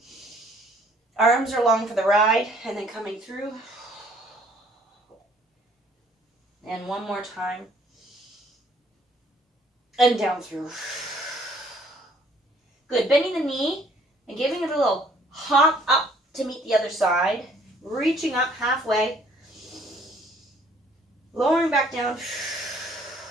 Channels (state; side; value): normal; both; correlation 0.60